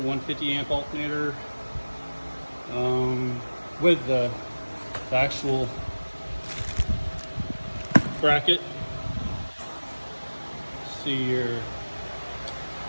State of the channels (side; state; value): both; inverted; correlation -1.00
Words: amp alternator with the actual bracket. See here,